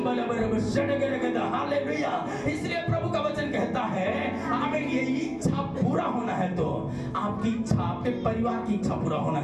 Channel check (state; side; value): identical; both; correlation 1.00